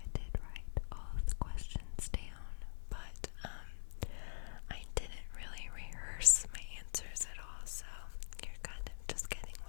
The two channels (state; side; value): silent; right; digital silence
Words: did write all of the questions down, but I didn't really rehearse my answers at all, so you're kind of just getting